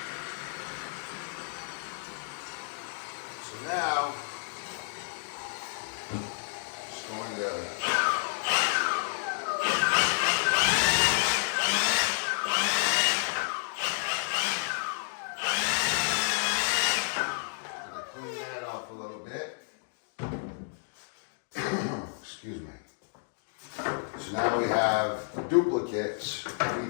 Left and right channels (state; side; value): silent; right; digital silence